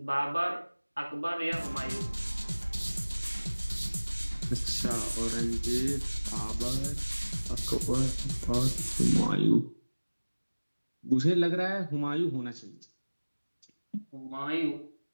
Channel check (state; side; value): inverted; both; correlation -1.00